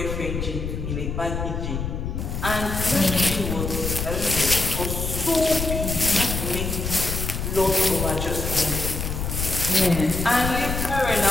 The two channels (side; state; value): left; noise; rumble, 3 dB below the sound